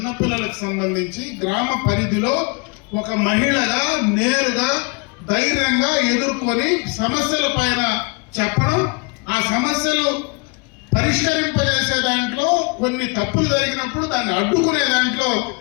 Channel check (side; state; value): right; quieter; 31.2 dB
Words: సంబంధించి గ్రామ పరిధిలో ఒక మహిళగా నేరుగా ధైర్యంగా ఎదుర్కొని సమస్యల పైన చెప్పడం, ఆ సమస్యలు పరిష్కరింపజేసే దాంట్లో కొన్ని తప్పులు జరిగినప్పుడు దాన్ని అడ్డుకునే దాంట్లో